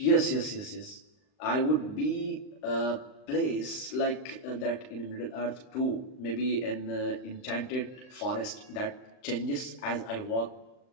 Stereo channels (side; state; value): right; late; 39 ms